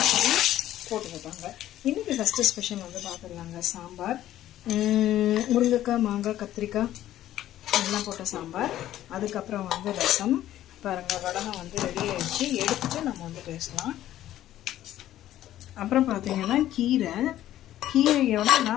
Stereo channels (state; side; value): quieter; right; 13.0 dB